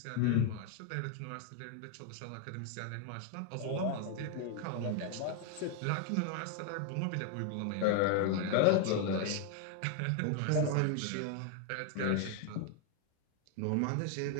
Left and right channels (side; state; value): both; different; correlation 0.00